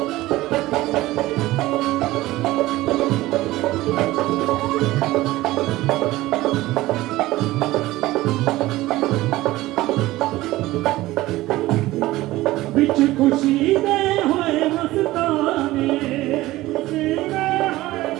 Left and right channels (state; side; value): quieter; left; 17.5 dB